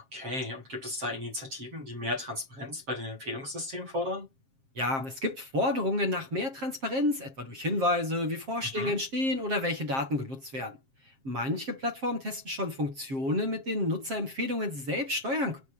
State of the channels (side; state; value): left; late; 7.5 ms